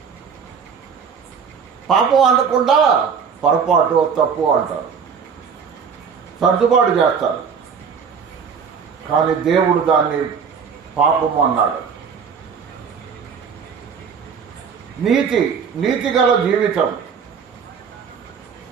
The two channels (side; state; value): left; quieter; 6.4 dB